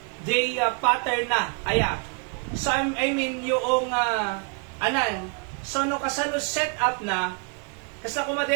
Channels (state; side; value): quieter; left; 39.9 dB